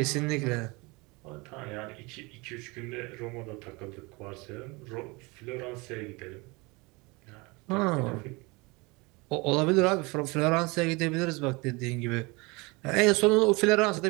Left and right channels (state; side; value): quieter; left; 25.9 dB